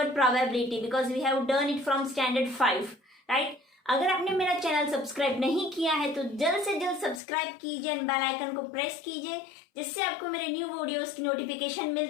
probability because we have done it from standard 5, right? अगर आपने मेरा channel subscribe नहीं किया है तो जल्द से जल्द सब्सक्राइब कीजिए एंड बेल आइकन को प्रेस कीजिए जिससे आपको मेरे न्यू वीडियोस की नोटिफिकेशन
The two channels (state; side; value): drops out; right; at 7.2 s